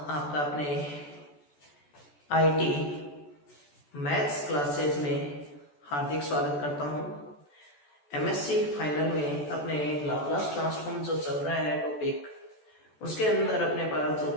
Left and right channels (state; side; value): late; right; 14 ms